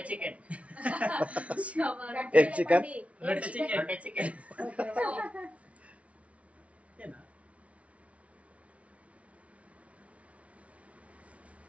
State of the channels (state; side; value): late; left; 0.064 ms